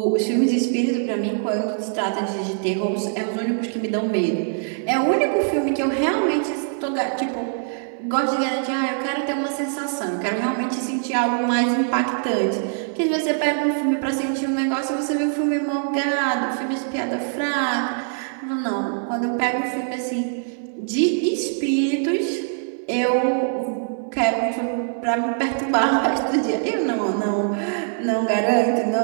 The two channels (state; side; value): silent; left; 64 dB below the other